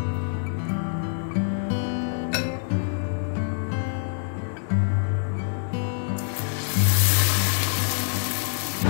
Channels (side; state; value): right; silent; digital silence